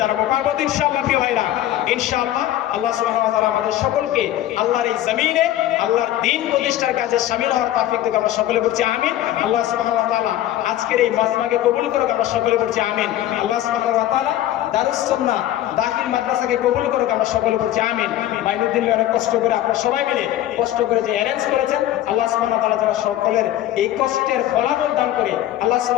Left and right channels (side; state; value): right; quieter; 13.3 dB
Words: দাঁড়াবো, পারবো ইনশাআল্লাহ প্রিয় ভাইরা। ইনশাআল্লাহ আল্লাহ সুবহানাহু ওয়া তাআলা আমাদের সকলকে আল্লাহর এই জমিনে আল্লাহর দ্বীন প্রতিষ্ঠার কাজে শামিল হওয়ার তৌফিক দিক। আমরা সকলে বলছি আমিন। আল্লাহ সুবহানাহু ওয়া তাআলা আজকের এই মাজমাকে কবুল করুক। আমরা সকলে বলছি আমিন। আল্লাহ সুবহানাহু ওয়া তাআলা দারুস সুন্নাহ দাখিল মাদ্রাসাকে কবুল করুক। আমরা সকলে বলছি আমিন। মাইনুদ্দিন ভাই অনেক কষ্ট করে, আপনারা সবাই মিলে কষ্ট করে যে অ্যারেঞ্জ করেছেন, আল্লাহ সুবহানাহু ওয়া তাআলা যেন সকলের এই কষ্টের ফলাফল দান করে, আল্লাহ